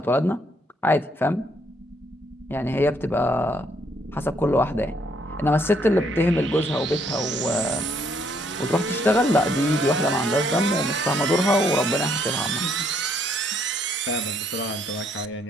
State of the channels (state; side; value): normal; both; correlation 0.69